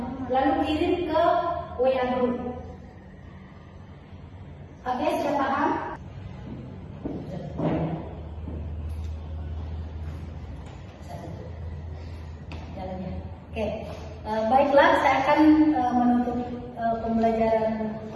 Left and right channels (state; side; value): identical; both; correlation 1.00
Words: Lalu kirim ke WA group. Oke, sudah paham? Oke, baiklah, saya akan menutup pembelajaran